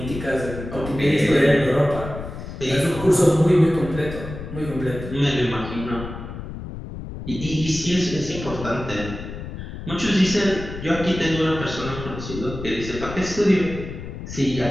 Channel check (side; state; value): left; noise; rumble, 10 dB below the sound